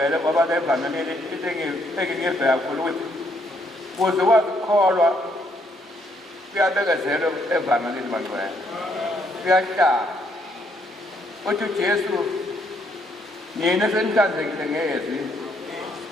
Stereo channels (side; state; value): both; normal; correlation 0.71